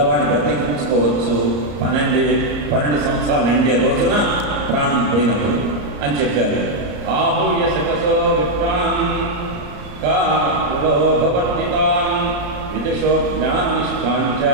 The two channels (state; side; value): late; left; 34 ms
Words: బ్రతికించుకోవచ్చు 12 సంవత్సరాలు నిండే రోజున ప్రాణం పోయినప్పుడు అని చెప్పారు. ఆహూయ శకసో విప్రాన్ కావర్తితాన్ విదుషో జ్ఞాననిష్టాంచ